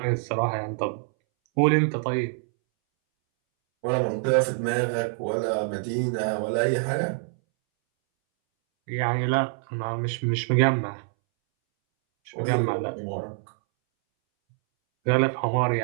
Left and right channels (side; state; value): left; silent; 61 dB below the other